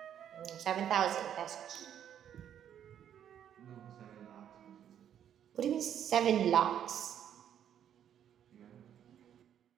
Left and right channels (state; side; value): quieter; left; 9.6 dB